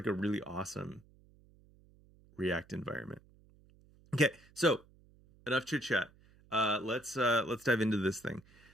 a really awesome React environment. Okay, so enough chit chat. Let's dive into this thing.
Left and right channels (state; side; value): noise; right; hum, 28 dB below the sound